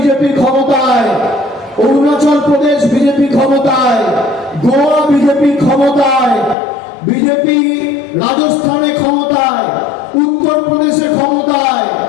ক্ষমতায়, অরুণাচল প্রদেশ বিজেপি ক্ষমতায়, গোয়া বিজেপি ক্ষমতায়, বিজেপি রাজস্থানে ক্ষমতায়, উত্তরপ্রদেশে ক্ষমতায়,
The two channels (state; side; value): drops out; right; at 6.6 s